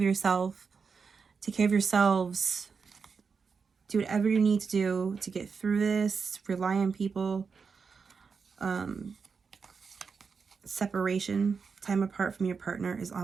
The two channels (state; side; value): quieter; left; 5.5 dB